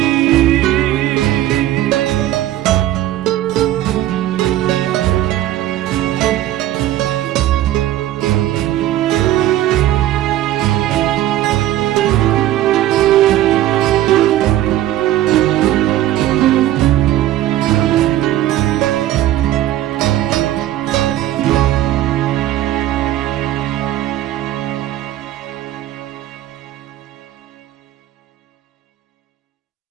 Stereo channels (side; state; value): left; quieter; 13.6 dB